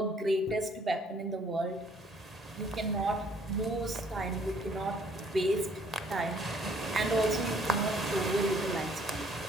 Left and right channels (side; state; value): both; normal; correlation 0.62